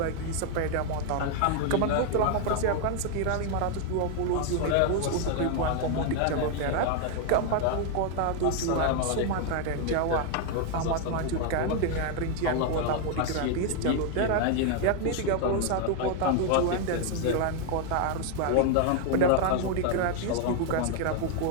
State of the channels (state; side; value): different; both; correlation 0.00